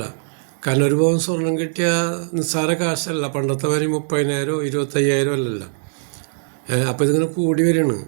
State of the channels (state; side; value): silent; left; 59 dB below the other